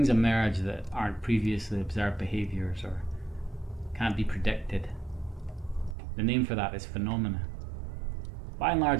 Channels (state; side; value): drops out; left; at 6.0 s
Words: emerge that aren't previously observed behaviours or can't be predicted. The name for that is phenomena. By and